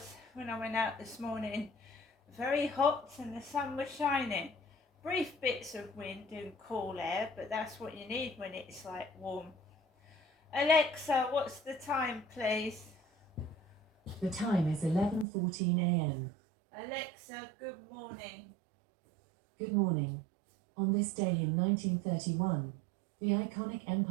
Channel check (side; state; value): left; drops out; at 15.2 s